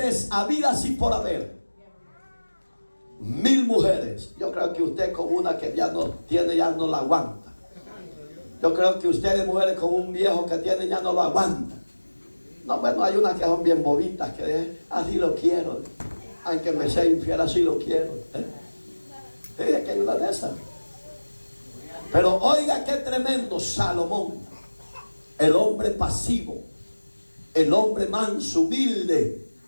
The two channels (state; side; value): inverted; both; correlation -1.00